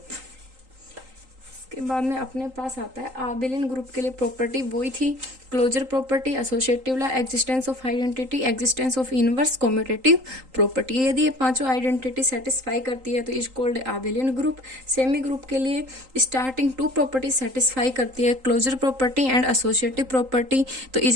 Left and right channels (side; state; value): left; late; 3.8 ms